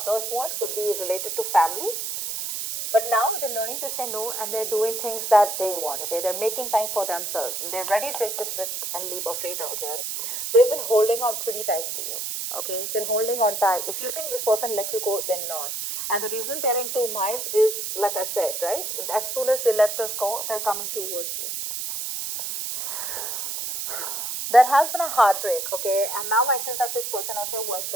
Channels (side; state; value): right; noise; hiss, 4 dB below the sound